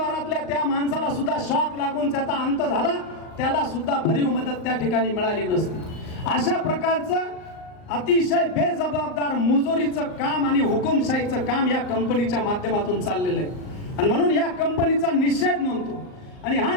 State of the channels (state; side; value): late; right; 38 ms